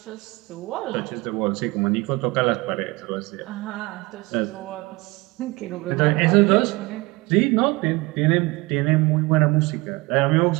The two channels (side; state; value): left; quieter; 23.5 dB